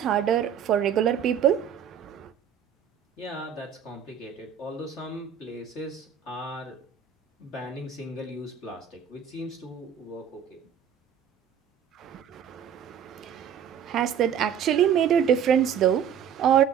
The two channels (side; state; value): left; quieter; 8.5 dB